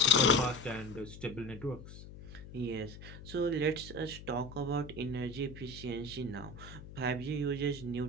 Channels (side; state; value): left; noise; hum, 14 dB below the sound